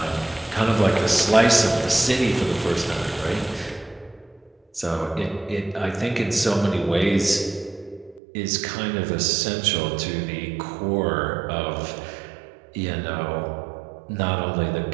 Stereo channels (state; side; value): drops out; left; at 8.2 s